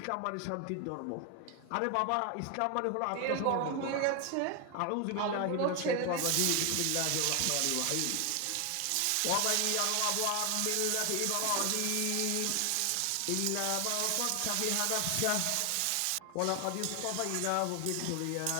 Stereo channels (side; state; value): both; different; correlation 0.01